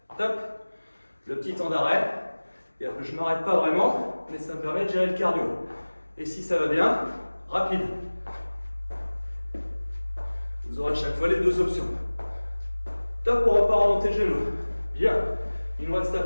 Top. Le petit temps d'arrêt. Je ne m'arrête pas vraiment, mais ça me permet de gérer le cardio. Et si ça va bien, rapide. Vous aurez à chaque fois les 2 options. Top, on repart en montée de genou. Bien. Il nous reste à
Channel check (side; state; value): both; inverted; correlation -1.00